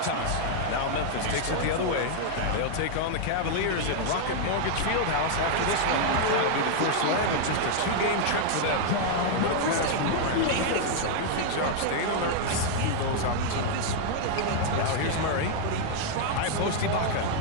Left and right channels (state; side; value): different; both; correlation 0.00